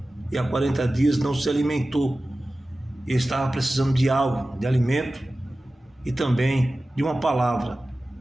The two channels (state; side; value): normal; both; correlation 0.96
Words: e há 40 dias não se alimentou. Ele estava precisando de algo, de alimento e também de uma palavra.